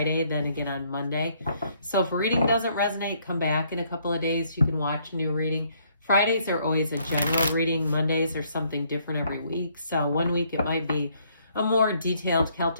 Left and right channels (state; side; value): inverted; both; correlation -0.67